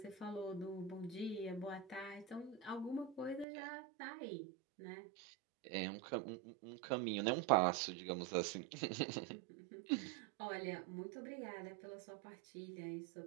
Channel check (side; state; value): left; drops out; at 3.5 s